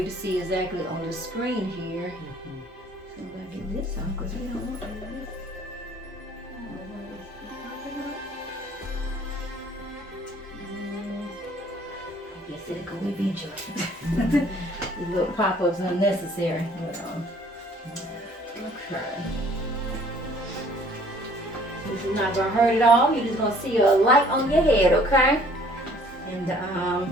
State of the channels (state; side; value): normal; both; correlation 0.57